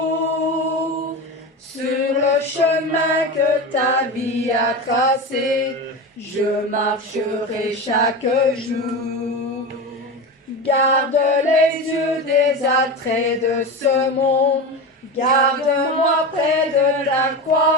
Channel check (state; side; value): normal; both; correlation 0.23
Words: sur le chemin que ta vie a tracé. Je marcherai chaque jour. Garde les yeux des attraits de ce monde. Garde-moi près de ta